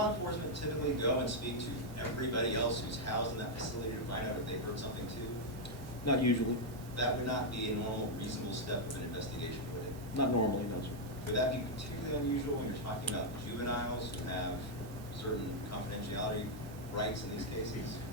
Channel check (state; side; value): normal; both; correlation -0.02